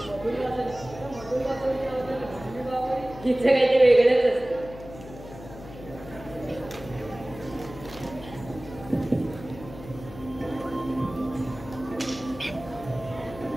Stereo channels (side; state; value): left; noise; hum, 15 dB below the sound